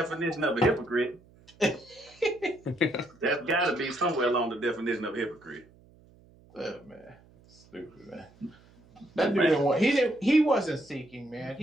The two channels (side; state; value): right; noise; hum, 27 dB below the sound